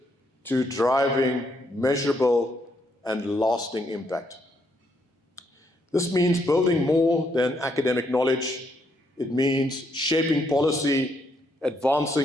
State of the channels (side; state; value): both; normal; correlation 0.75